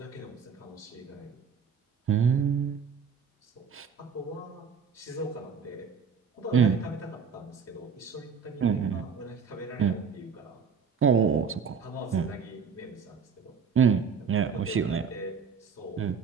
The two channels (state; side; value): quieter; left; 6.1 dB